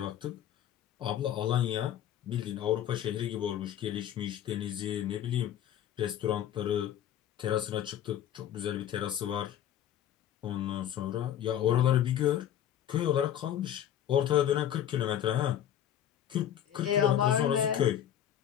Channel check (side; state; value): right; quieter; 10.7 dB